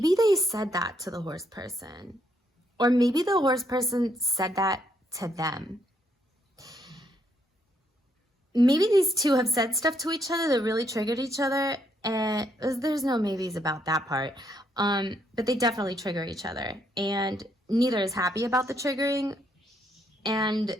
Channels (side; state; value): both; normal; correlation 0.73